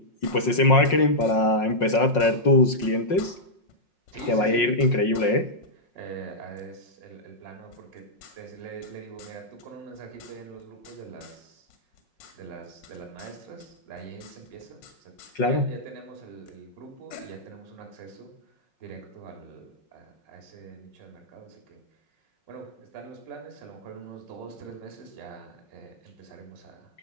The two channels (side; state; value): right; late; 5.5 ms